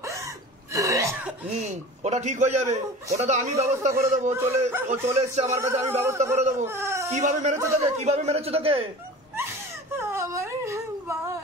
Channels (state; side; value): normal; both; correlation 0.37